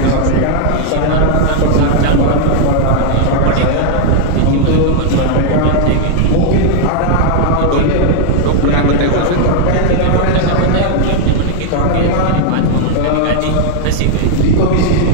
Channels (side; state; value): both; different; correlation 0.00